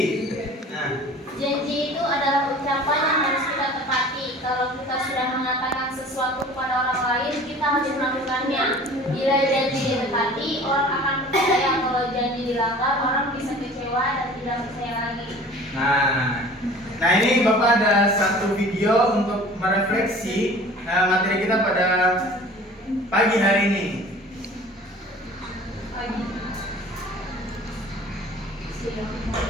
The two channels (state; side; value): normal; both; correlation 0.45